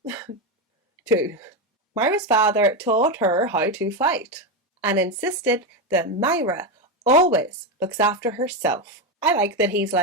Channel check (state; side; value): normal; both; correlation 0.11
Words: too. Myra's father taught her how to fight and insisted that Myra always looks after herself. I like that he's